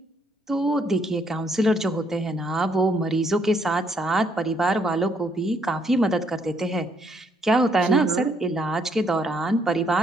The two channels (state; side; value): normal; both; correlation 0.70